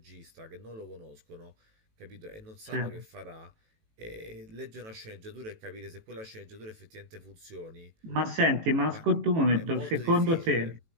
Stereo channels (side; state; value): left; late; 18 ms